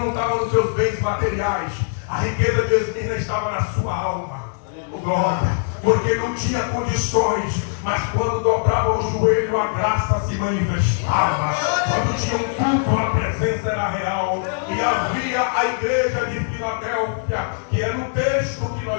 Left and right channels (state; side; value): silent; right; 65 dB below the other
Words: estava nos seus bens materiais. A riqueza de Esmirna estava na sua alma. Glória. Porque não tinha condições, mas quando dobrava o joelho, a graça se manifestava. Quando tinha um culto, a presença era real. E havia a igreja de Filadélfia, que é no texto que